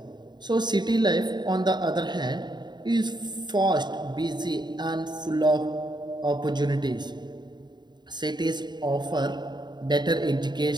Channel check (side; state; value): left; late; 0.21 ms